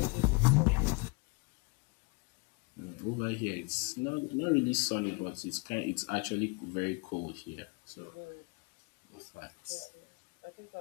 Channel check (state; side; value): quieter; right; 30.5 dB